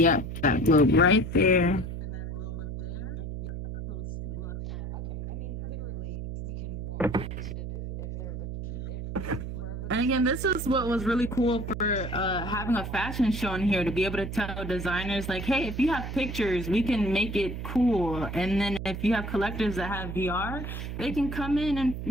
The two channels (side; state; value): right; noise; hum, 6 dB below the sound